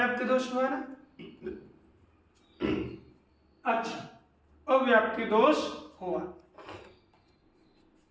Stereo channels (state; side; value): identical; both; correlation 1.00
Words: दोष हुआ ना। अच्छा, अव्याप्ति दोष हुआ।